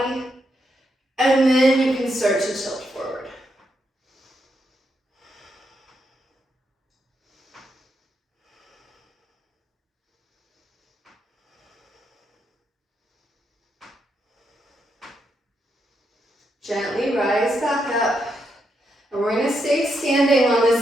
and then you can start to tilt forward. Gently rise back up. And we're going to stay standing on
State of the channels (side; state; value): both; normal; correlation 0.81